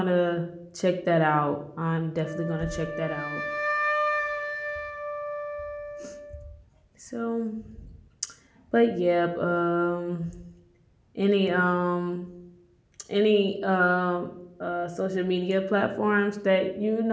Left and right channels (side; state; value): both; identical; correlation 1.00